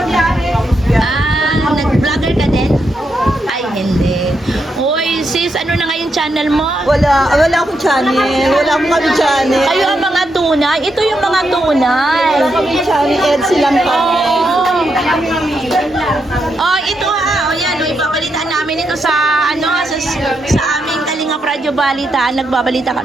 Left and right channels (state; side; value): normal; both; correlation 0.82